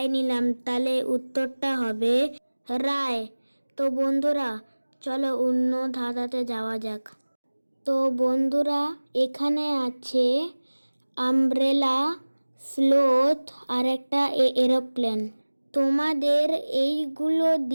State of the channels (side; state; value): both; inverted; correlation -1.00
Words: নিলাম, তাহলে উত্তরটা হবে রায়। তো বন্ধুরা, চলো অন্য ধাঁধাতে যাওয়া যাক। তো বন্ধুরা, এখানে আছে আমব্রেলা, স্লোথ আর একটা এরোপ্লেন। তোমাদের এইগুলো